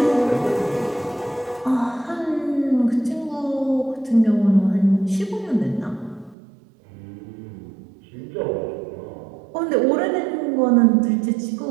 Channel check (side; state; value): left; drops out; at 6.4 s